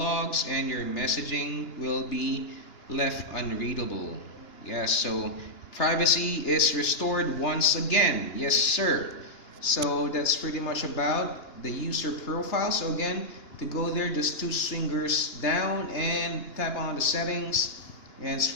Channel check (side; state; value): right; late; 2.9 ms